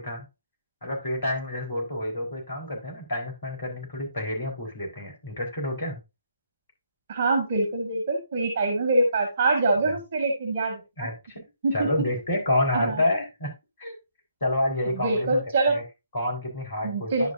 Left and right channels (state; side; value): inverted; both; correlation -0.71